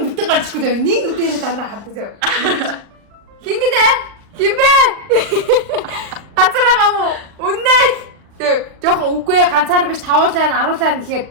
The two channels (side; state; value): left; late; 39 ms